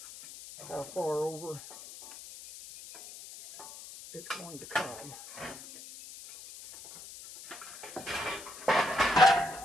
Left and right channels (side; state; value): left; noise; hiss, 15 dB below the sound